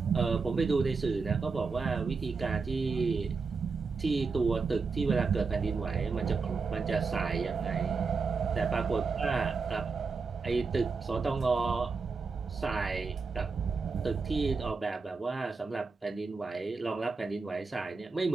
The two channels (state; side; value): quieter; left; 4.6 dB